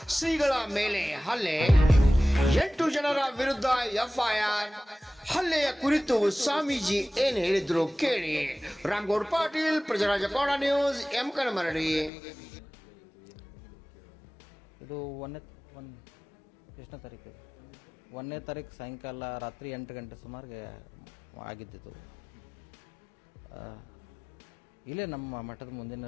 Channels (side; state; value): right; drops out; at 12.1 s